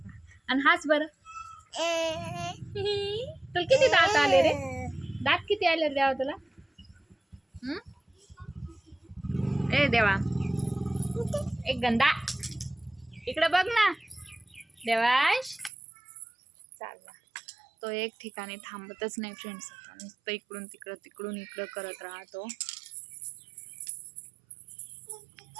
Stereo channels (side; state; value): left; drops out; at 15.7 s